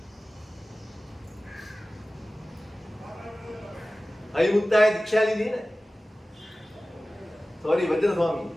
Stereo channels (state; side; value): normal; both; correlation 0.97